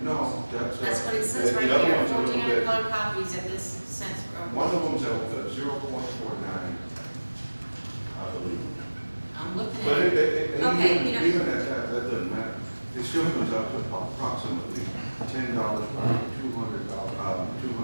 No, That's what it says the right other here, one's a little 1,400 bit- color copies at this cents for over. One of them's at 0.49, I believe. I'm looking But at it. Okay, even at that doesn't matter. It still comes up to approximately $10 per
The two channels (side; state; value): both; inverted; correlation -1.00